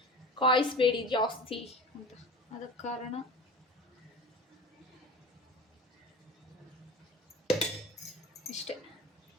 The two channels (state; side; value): normal; both; correlation 0.35